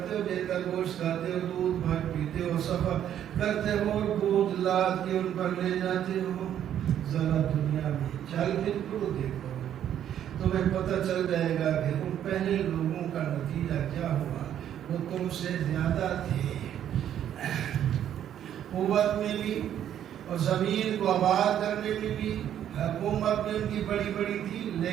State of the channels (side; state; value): left; quieter; 10.3 dB